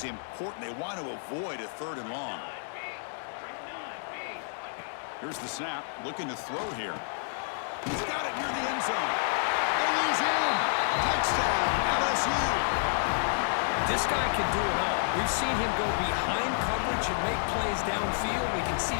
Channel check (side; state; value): right; silent; digital silence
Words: important. They want to avoid a third and long. Here's the snap. Looking to throw here. He's got it near the end zone. And he's in. Touchdown, LSU. This guy can do it all. We've seen him go behind coverage and make plays downfield. We can see